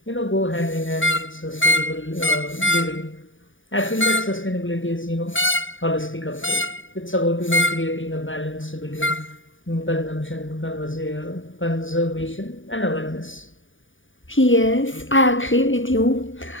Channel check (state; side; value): late; right; 0.57 ms